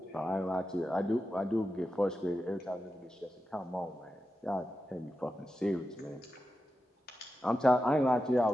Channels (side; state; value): both; normal; correlation 0.90